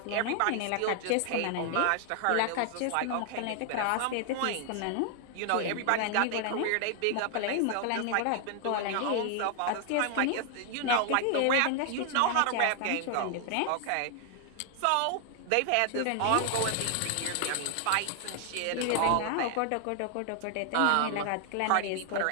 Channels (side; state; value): both; different; correlation 0.00